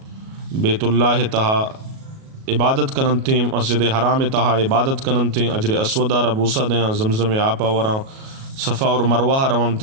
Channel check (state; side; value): late; left; 37 ms